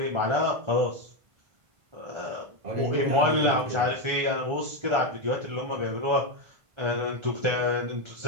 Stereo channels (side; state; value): left; late; 1.5 ms